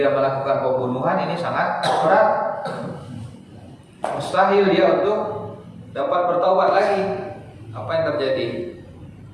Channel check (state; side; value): identical; both; correlation 1.00